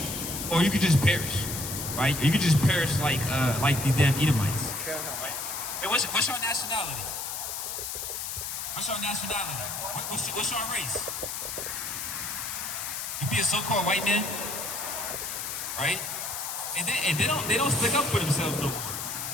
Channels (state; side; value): noise; left; hiss, 5 dB below the sound